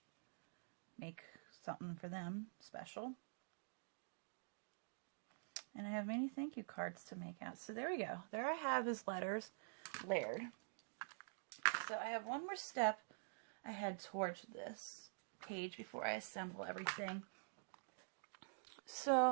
make something for them special. And I have many thank you cards to make out. So there we go. There I have his letters layered. So I have one more step I head towards this page before I assemble everything.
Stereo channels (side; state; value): left; silent; digital silence